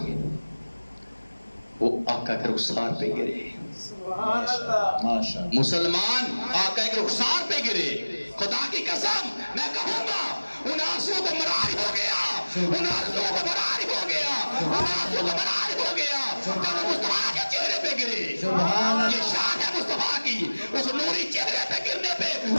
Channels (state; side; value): inverted; both; correlation -1.00